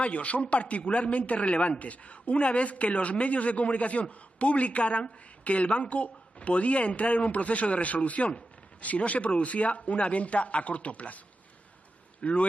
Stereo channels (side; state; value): both; normal; correlation 0.91